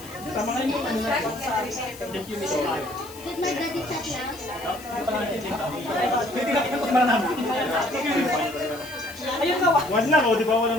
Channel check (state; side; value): noise; left; hiss, 17 dB below the sound